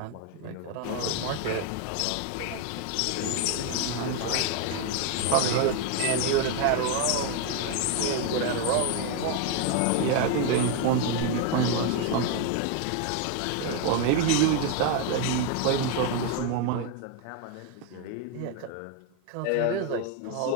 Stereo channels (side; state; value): both; different; correlation 0.01